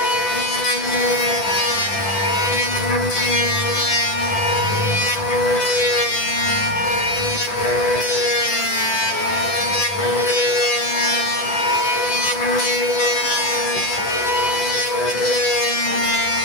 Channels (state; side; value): late; right; 10 ms